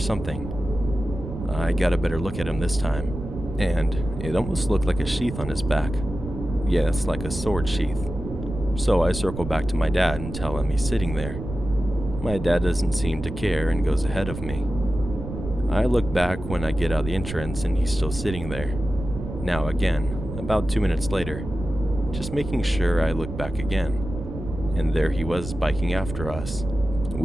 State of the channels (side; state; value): right; noise; rumble, 8 dB below the sound